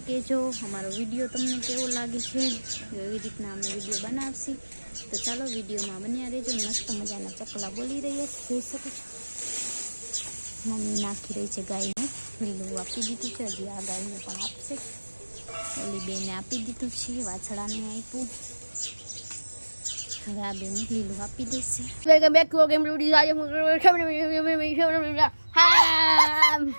કહેજો. અમારો વિડીયો તમને કેવો લાગે છે, એવી રીતના અમે વિડીયો બનાવશી. તો ચાલો વિડીયોમાં બન્યા રહેજો. મસ્ત મજાના ચકલા બોલી રહ્યા છે, જોઈ શકો છો. મમ્મી નાખી રહી છે ગાયને, લીલું આપી દીધું છે, હજી આ ગાયને પણ આપશે. ઓલી બેને આપી દીધું છે, વાછડાને આપ્યું, હવે આ બેને લીલું આપી દેશે. વેલકમ બેક ટુ ગેમ રૂડી આજે હું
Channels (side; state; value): both; inverted; correlation -1.00